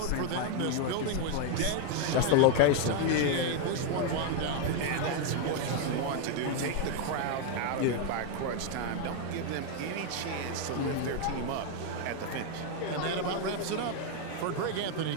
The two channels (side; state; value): both; different; correlation 0.01